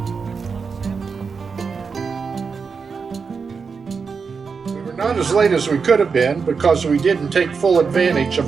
We were not as late as we could have been because we didn't take full advantage of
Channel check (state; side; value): quieter; left; 5.4 dB